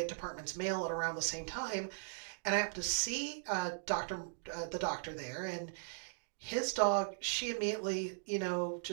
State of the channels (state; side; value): silent; left; digital silence